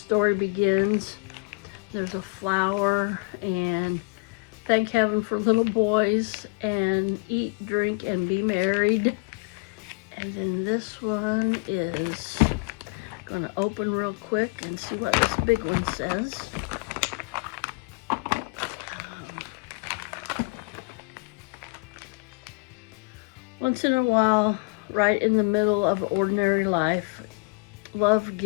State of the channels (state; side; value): quieter; right; 32.1 dB